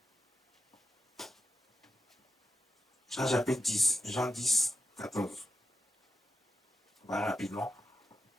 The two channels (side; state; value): both; normal; correlation 0.90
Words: Jean chapitre 10, Jean 10, 14. On va rapidement.